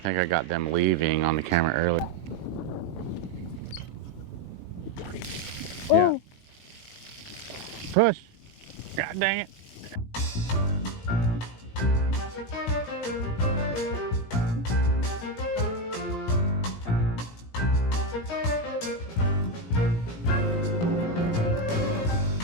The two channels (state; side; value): late; right; 17 ms